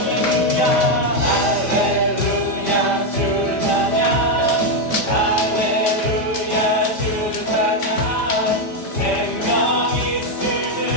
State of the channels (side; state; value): right; late; 5.1 ms